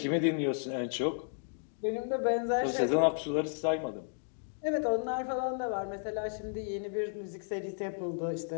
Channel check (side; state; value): right; silent; digital silence